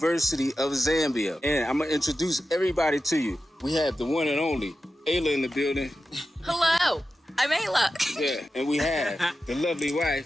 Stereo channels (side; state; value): both; normal; correlation 0.92